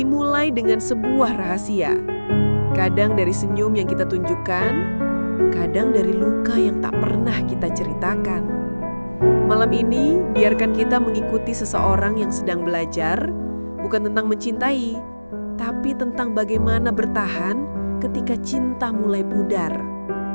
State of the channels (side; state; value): both; inverted; correlation -1.00